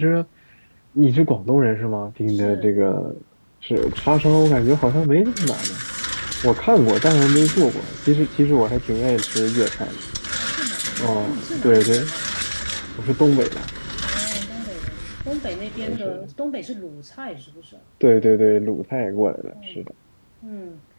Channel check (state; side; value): inverted; both; correlation -1.00